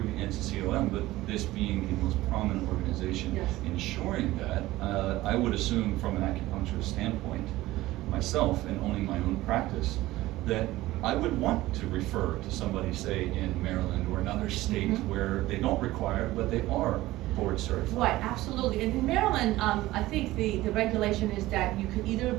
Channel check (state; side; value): quieter; left; 17.2 dB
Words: the NCCAOM, but this being the most prominent organization ensuring that, I would assume from an acupuncturist standpoint, myself, and owning my own practice, that I would want to refer to somebody, say, in Maryland or another state where they don't require it, but they are board certified. Right, absolutely. And in Maryland, I think the regulation is that you can either